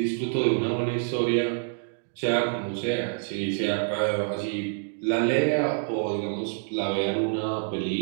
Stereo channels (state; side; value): silent; left; digital silence